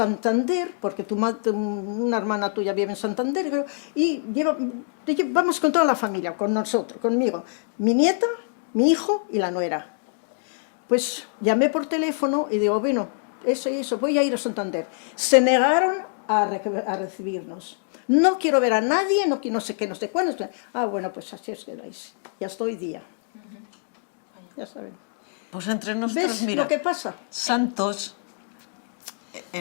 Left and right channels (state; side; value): silent; right; digital silence